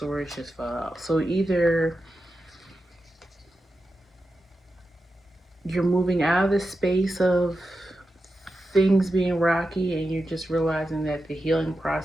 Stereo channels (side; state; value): both; normal; correlation 0.90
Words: just fell out. So either you're moving out of the space of things being rocky and you're just realizing that the healing